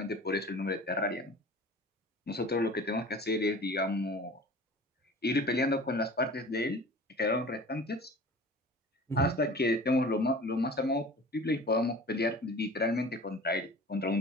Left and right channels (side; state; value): both; normal; correlation 0.41